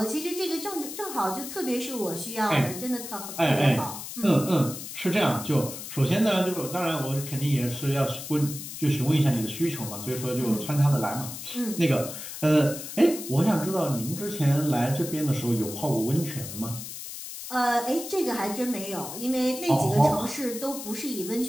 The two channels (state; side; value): noise; left; hiss, 9 dB below the sound